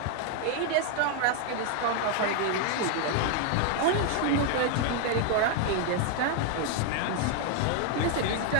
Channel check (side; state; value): both; different; correlation 0.00